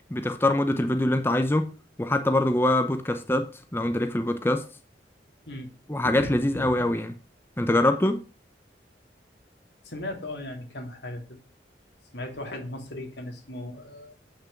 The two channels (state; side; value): normal; both; correlation 0.78